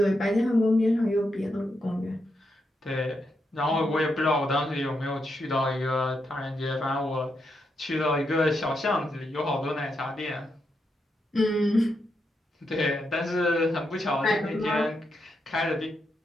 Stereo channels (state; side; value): normal; both; correlation 0.83